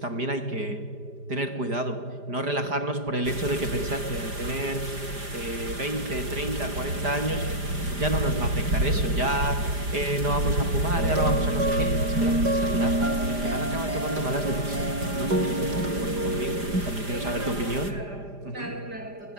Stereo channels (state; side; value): late; left; 5.0 ms